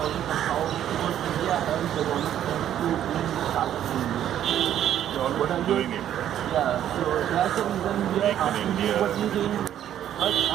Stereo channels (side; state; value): left; quieter; 10.9 dB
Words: and how India helps the government to bring startups in India. What are doing it? Yeah, so that's the reason we are asking you what you think. But